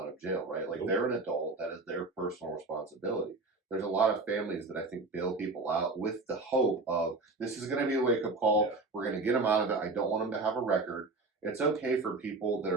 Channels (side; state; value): left; quieter; 3.5 dB